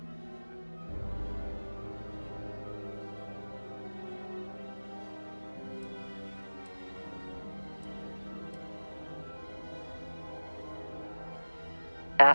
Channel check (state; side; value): inverted; both; correlation -1.00